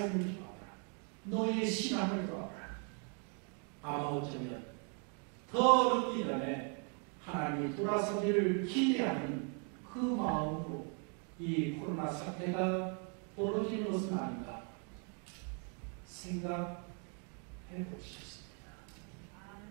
돌아오라. 너희의 신앙을 돌아오라. 아마 어쩌면 더 늦기 전에 하나님이 돌아서기를 기대하는 그 마음으로 이 코로나 사태가 벌어지는 것은 아닌가 생각해 보셨습니다.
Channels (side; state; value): left; quieter; 39.9 dB